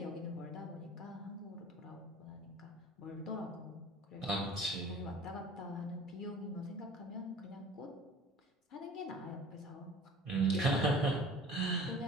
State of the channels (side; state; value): both; normal; correlation 0.44